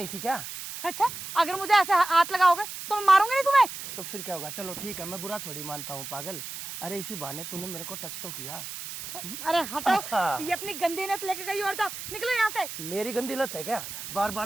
थी क्या? अच्छा, अगर मुझे ऐसे हाथ लगाओगे तो मैं मारूंगी नहीं तुम्हें। तो फिर क्या होगा? चलो ठीक है, मैं बुरा थोड़ी मानता हूँ पागल। अरे इसी बहाने तूने मेरे को टच तो किया। अरे हटो, ये अपनी गंदी नत लेके गई और जाओ, निकलो यहाँ से। मेरी गंदी लत है क्या? बार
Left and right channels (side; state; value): right; noise; hiss, 9 dB below the sound